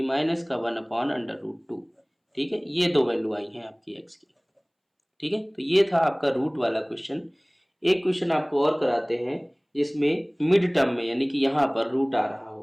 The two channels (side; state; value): both; identical; correlation 1.00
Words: माइनस का 1/√2। ठीक है, ये दो वैल्यू आई हैं आपकी x की। ठीक है, तो ये था आपका रूट वाला क्वेश्चन। एक क्वेश्चन आपको और कराते हैं जिसमें मिड टर्म में यानी कि यहाँ पर रूट आ रहा